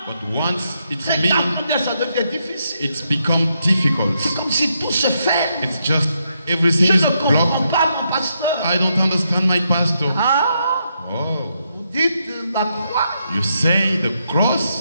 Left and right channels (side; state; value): both; inverted; correlation -0.80